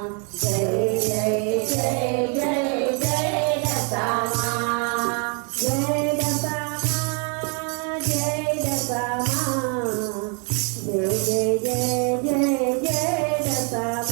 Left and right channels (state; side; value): quieter; left; 37.5 dB